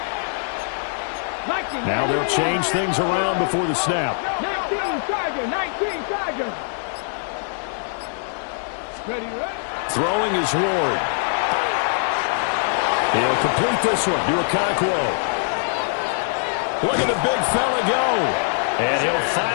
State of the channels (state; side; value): silent; right; digital silence